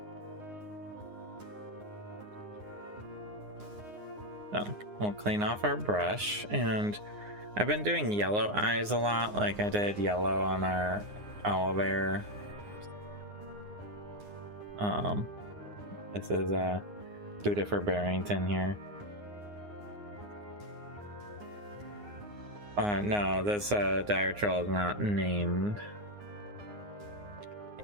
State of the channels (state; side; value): late; left; 9.7 ms